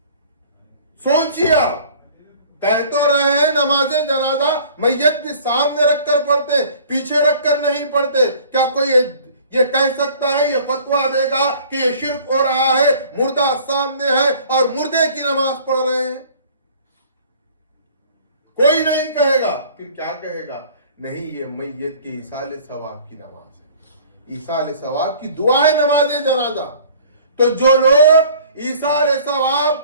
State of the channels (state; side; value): inverted; both; correlation -0.51